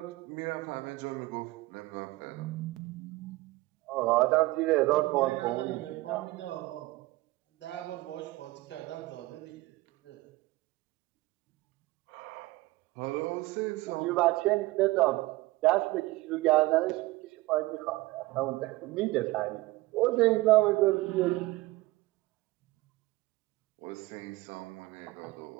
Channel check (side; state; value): left; quieter; 19.5 dB